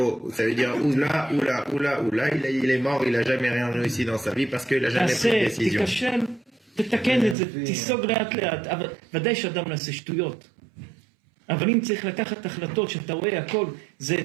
ça veut dire ou là, ou là, ou là, ou là. Il est mort, il a jamais rien réussi dans sa vie parce qu'il a jamais pris de décision. תיכשל, תתקן את זה, תיסוג לאט לאט, אבל ודאי שאדם נעשה שטויות. אבל אם צריך לקחת החלטות שאתה רואה הכל, זה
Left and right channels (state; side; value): drops out; left; at 7.4 s